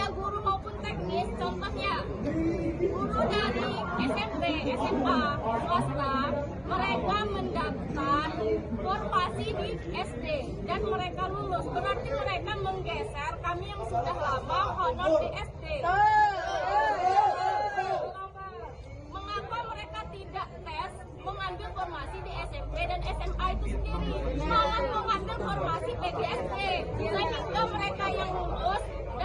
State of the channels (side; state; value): both; identical; correlation 1.00